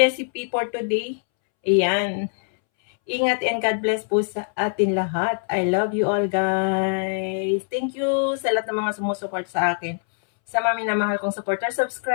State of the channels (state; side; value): silent; right; 63 dB below the other